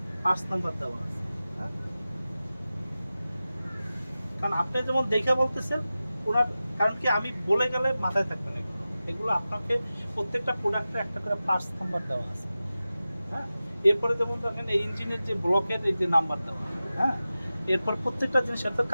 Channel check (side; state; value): both; inverted; correlation -0.94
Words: পার্টস নাম্বার দেওয়া আছে, হ্যাঁ। কারণ আপনি যেমন দেখে বলতেছেন, ওনার কারণ কি, আমি বলে গেলে মাথায় থাকবে না। এগুলো আপনাকে প্রত্যেকটা প্রোডাক্টে একটা করে পার্টস নাম্বার দেওয়া আছে, হ্যাঁ। এরপরে যেমন দেখেন, এই ইঞ্জিনের যে ব্লকের এই যে নাম্বার দেওয়া, হ্যাঁ। এরপর প্রত্যেকটা জিনিস, তো